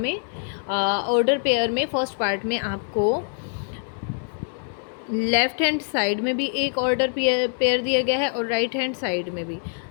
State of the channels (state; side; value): silent; right; 62 dB below the other